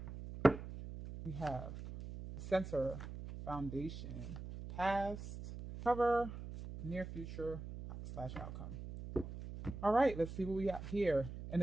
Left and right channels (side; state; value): right; noise; hum, 10 dB below the sound